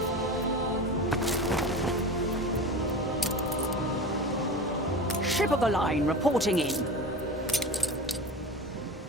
Ship of the line reporting in.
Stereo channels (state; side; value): normal; both; correlation 0.30